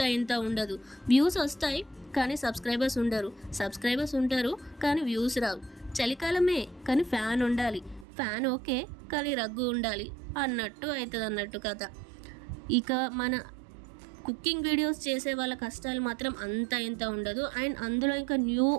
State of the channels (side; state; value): left; drops out; at 8.1 s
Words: ఇంత ఉండదు. వ్యూస్ వస్తాయి కానీ సబ్స్క్రైబర్స్ ఉండరు, సబ్స్క్రైబర్స్ ఉంటారు కానీ వ్యూస్ రావు. చలికాలమే కానీ ఫ్యాన్ ఉండాలి, ఫ్యాన్ ఓకే కానీ రగ్గు ఉండాలి అన్నట్టు అవుతుంది అన్నట్టు కథ. ఇక మన కుకింగ్ వీడియోస్ చేసే వాళ్ళ కష్టాలు మాత్రం అంత ఇంత ఉండదు. అండ్ అందులో ఇంకా